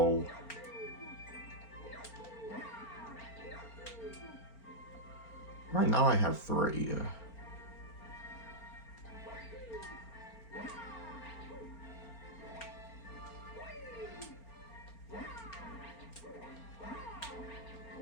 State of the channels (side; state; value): right; late; 4.4 ms